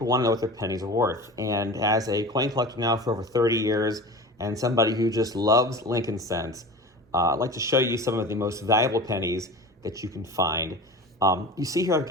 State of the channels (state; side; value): normal; both; correlation 0.34